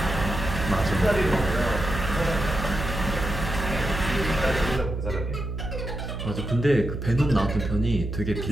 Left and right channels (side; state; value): right; noise; hum, 5 dB below the sound